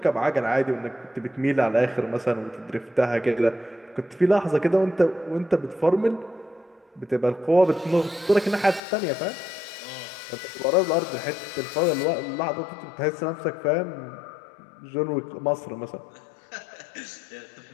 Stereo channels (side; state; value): right; drops out; at 8.8 s